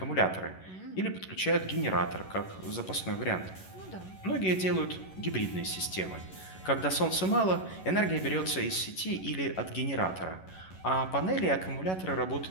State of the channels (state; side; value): late; right; 11 ms